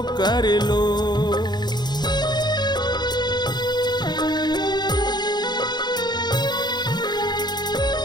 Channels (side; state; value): right; late; 0.21 ms